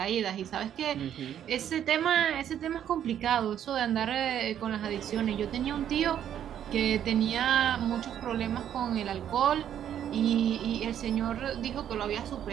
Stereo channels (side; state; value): left; quieter; 10.0 dB